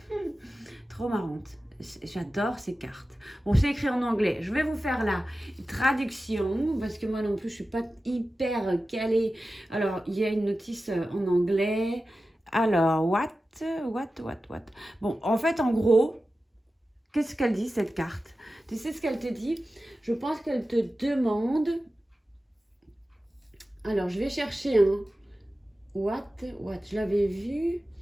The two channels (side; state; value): both; normal; correlation 0.94